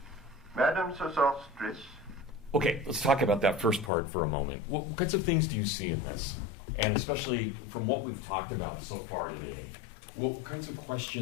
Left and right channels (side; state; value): right; drops out; at 3.9 s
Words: Madam Sosostris. Okay, let's talk about that first part for a moment. What kinds of things do you see in this? And especially from what we've talked about so far today, what kinds of